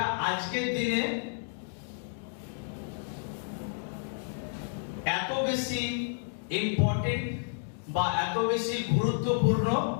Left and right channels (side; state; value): right; silent; digital silence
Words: আজকের দিনে এত বেশি ইম্পর্টেন্ট বা এত বেশি গুরুত্বপূর্ণ